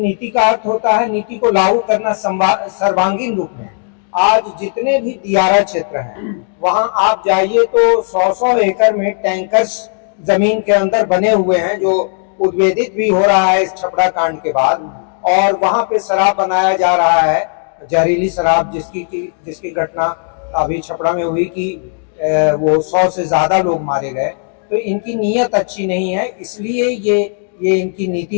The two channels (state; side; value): silent; right; 59 dB below the other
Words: का अर्थ होता है नीति को लागू करना सर्वांगीण रूप में। आज जितने भी दियारा क्षेत्र हैं वहां आप जाइए तो 100-100 एकड़ में टैंकर्स जमीन के अंदर बने हुए हैं, जो उद्वेदित भी हो रहा है इस छपड़ा कांड के बाद। और वहां पे शराब बनाया जा रहा है, जहरीली शराब, जिसकी घटना अभी छपड़ा में हुई कि वो 100 से ज्यादा लोग मारे गए। तो इनकी नीयत अच्छी नहीं है, इसलिए ये इनकी